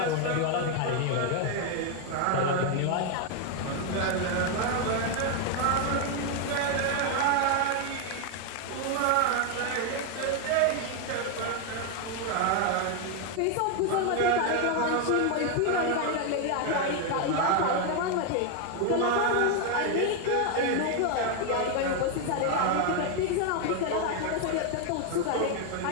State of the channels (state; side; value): different; both; correlation 0.01